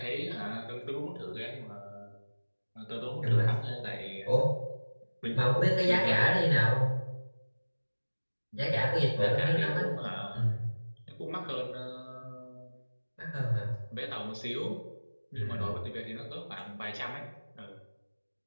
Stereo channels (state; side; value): inverted; both; correlation -1.00